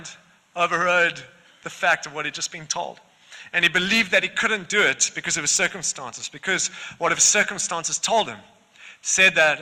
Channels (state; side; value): identical; both; correlation 1.00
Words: overrode the fact of what he'd just been told. And he believed that he couldn't do it because of his circumstances, because what his circumstances told him. Said that